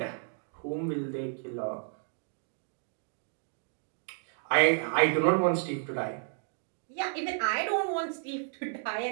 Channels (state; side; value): silent; left; 56 dB below the other